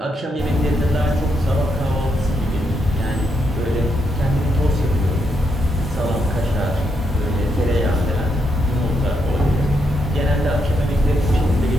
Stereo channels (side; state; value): both; normal; correlation 0.80